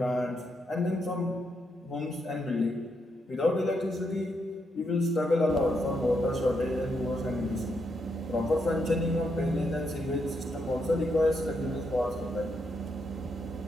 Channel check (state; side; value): normal; both; correlation 0.80